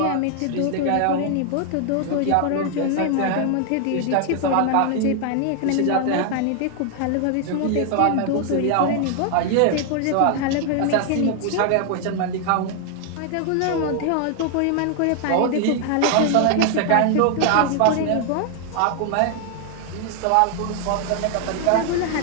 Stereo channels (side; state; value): both; different; correlation 0.00